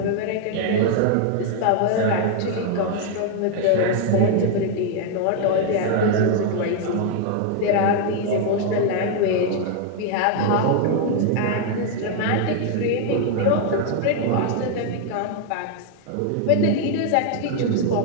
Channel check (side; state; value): both; different; correlation 0.00